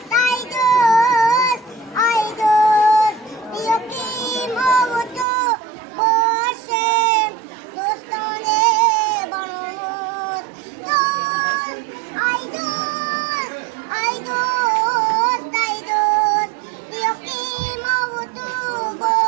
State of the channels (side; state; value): left; drops out; at 5.2 s